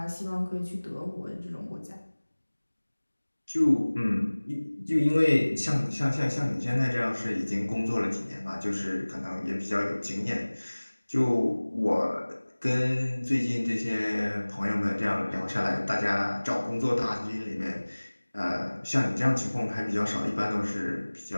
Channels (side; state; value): both; inverted; correlation -1.00